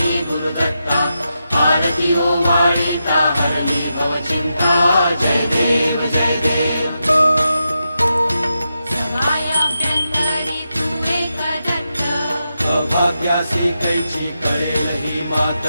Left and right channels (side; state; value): both; inverted; correlation -0.87